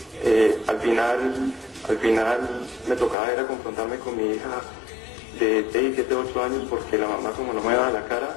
Al final me tocaba era confrontarme con mi hija de 6, 7, 8 años porque la mamá como no me daba la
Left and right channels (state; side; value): drops out; right; at 3.2 s